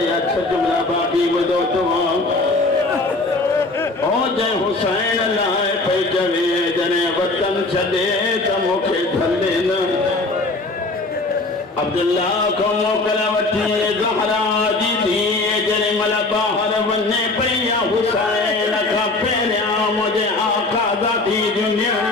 अच्छा जुमला बाकी बदो तो ओ जय हुसैन लाए पे जवे जने वतन छदे त मुखे धले न अब्दुल्ला को मोकला वठी ज़हरा जी थी जने मल बाहर वने पया हुसैन का पेरिया मुझे आका ज़ाती दुनिया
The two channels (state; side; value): quieter; right; 3.2 dB